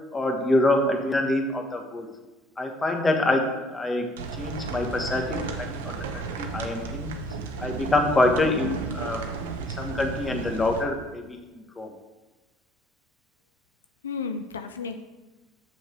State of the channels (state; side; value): normal; both; correlation 0.62